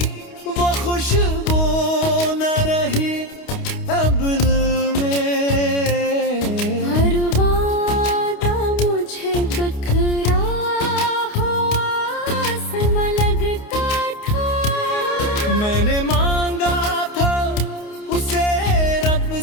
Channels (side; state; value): right; late; 29 ms